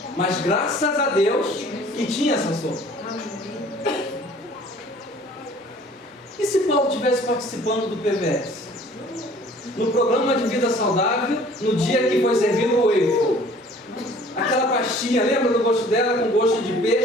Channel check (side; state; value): both; normal; correlation 0.52